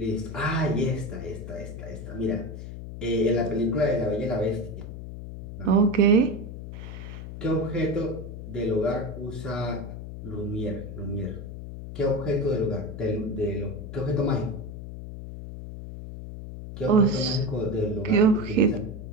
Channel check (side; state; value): left; noise; hum, 10 dB below the sound